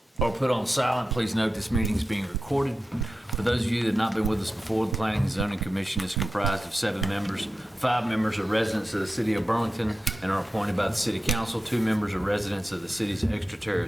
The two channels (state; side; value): normal; both; correlation 0.92